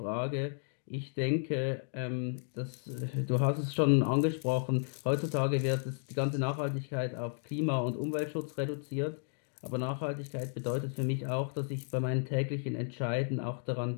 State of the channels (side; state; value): right; silent; 55 dB below the other